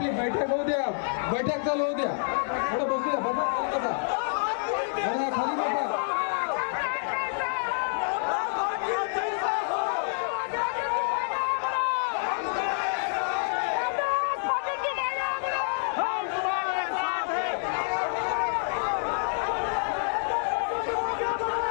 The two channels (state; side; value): silent; right; digital silence